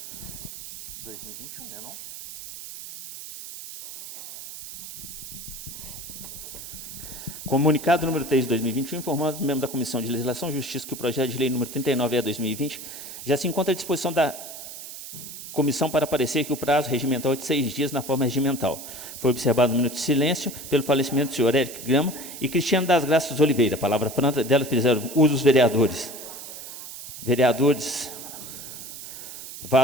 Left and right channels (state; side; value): noise; right; hiss, 11 dB below the sound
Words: Né, não? Comunicado número 3 de 2021, informamos o membro da Comissão de Legislação e Justiça que o projeto de lei número 39/2020 já se encontra à disposição da comissão para parecer que o prazo regimental é de 6 dias na forma regimental. Foi observado um minuto de silêncio pelo falecimento do senhor Érico Grama e Cristiano das Graças Oliveira. A palavra franca delas fizeram uso os vereadores. Vereadores